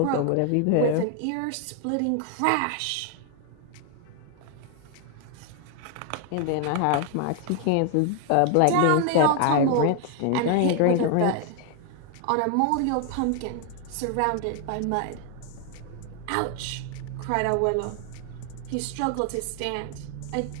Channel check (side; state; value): both; different; correlation 0.00